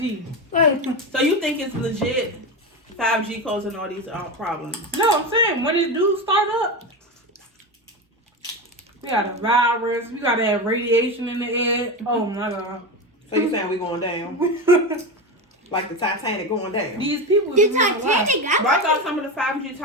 Like, So you think it's legit 5G causing all these problems? No, I'm saying when it do start up, we got a virus. We gotta have radiation in the air. Oh my god. So you saying we going down? Like the Titanic going down? These people. The is really alive. Titanic got But I thought some of the 5G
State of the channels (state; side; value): normal; both; correlation 0.19